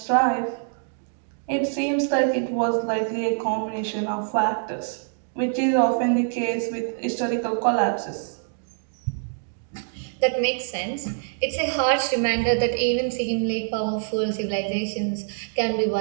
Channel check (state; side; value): silent; left; digital silence